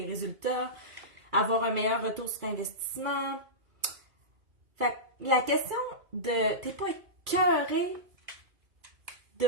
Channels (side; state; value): left; late; 2.3 ms